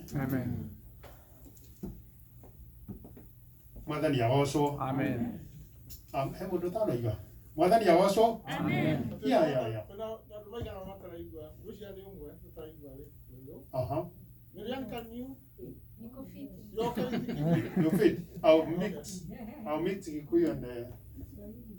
Amen. Mwathani agoco. Amen. Hebu ndotano iga. Mwathani agoco. Amen. Ya. Aha. You fit. I'll mix Kikuyu and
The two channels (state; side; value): identical; both; correlation 1.00